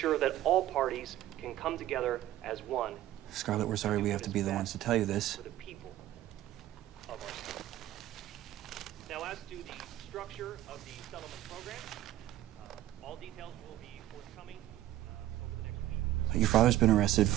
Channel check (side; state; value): left; quieter; 13.8 dB